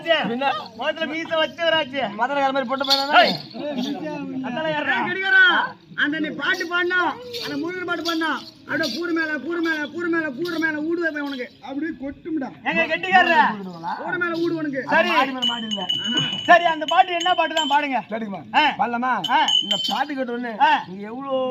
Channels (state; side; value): identical; both; correlation 1.00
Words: முதல்ல மீச வச்சவராச்சு மதுரை மாதிரி போட்டு அந்த நீ பாட்டு பாடினா அந்த முருகன் பாட்டு பாடினா அப்படியே கூறு மேல ஊடு வைப்பேன் உனக்கு அப்படியே கொட்டும்டா எங்க கெட்டிக்காரர கூறு மேல ஊடு உனக்கு சரி மாடி இல்ல சரி அந்த பாட்டு என்ன பாட்டு தான் பாடுங்க கேடுமா பாடலாமா இந்த பாட்டு கேட்ட உடனே நீங்க எவ்வளவு